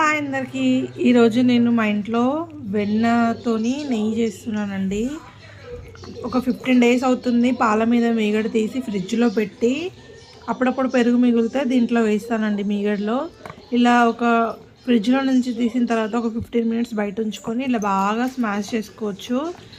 అందరికీ. ఈరోజు నేను మా ఇంట్లో వెన్నతోని నెయ్యి చేస్తున్నానండి. ఒక 15 డేస్ అవుతుంది. పాల మీద మీగడ తీసి ఫ్రిడ్జ్లో పెట్టి అప్పుడప్పుడు పెరుగు మిగిలితే దీంట్లో వేస్తానండి మీగడలో. ఇలా ఒక ఫ్రిడ్జ్లో నుంచి తీసిన తర్వాత ఒక 15 మినిట్స్ బయట ఉంచుకొని ఇలా బాగా స్మాష్ చేసుకోవచ్చు.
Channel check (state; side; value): identical; both; correlation 1.00